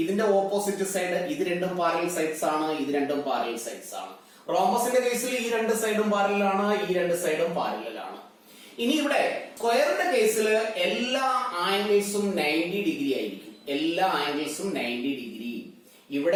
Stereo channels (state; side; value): identical; both; correlation 1.00